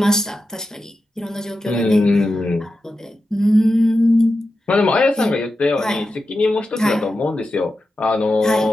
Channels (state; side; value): normal; both; correlation 0.90